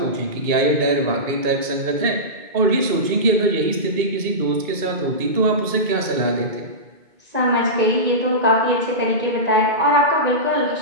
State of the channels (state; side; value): late; left; 2.2 ms